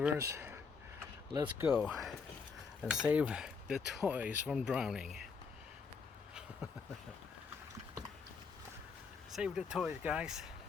Let's go and save the toys from drowning. Save the toys, guys.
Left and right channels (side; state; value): right; quieter; 5.3 dB